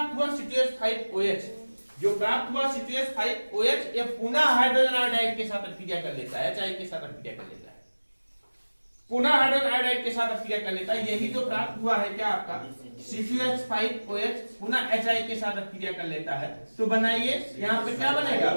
हुआ C2H5OH, जो प्राप्त हुआ C2H5OH ये पुनः हाइड्रोजन आयोडाइड के साथ अपक्रिया कर लेता है, HI के साथ अपक्रिया कर लेता है, पुनः हाइड्रोजन आयोडाइड के साथ अपक्रिया कर लेता है। यही जो प्राप्त हुआ है क्या आपका C2H5OH पुनः HI के साथ अपक्रिया कर लेता है। तो बनाइए यहाँ पे क्या बनेगा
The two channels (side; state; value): both; inverted; correlation -1.00